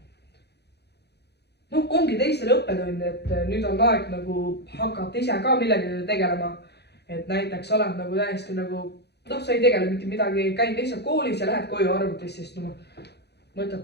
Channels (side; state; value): right; late; 0.48 ms